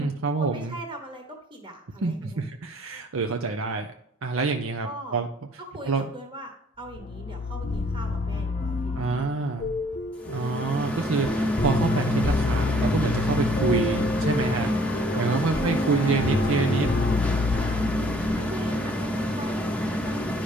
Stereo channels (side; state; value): both; normal; correlation 0.59